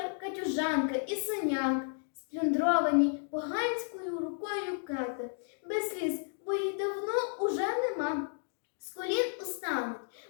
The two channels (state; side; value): silent; right; 56 dB below the other